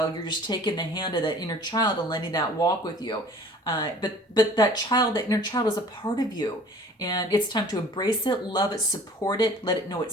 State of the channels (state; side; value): normal; both; correlation 0.48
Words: you're just taking the hand of that inner child and letting that walk with you. But that inner child is a part of you. And it's time to embrace it, love it, support it, let it know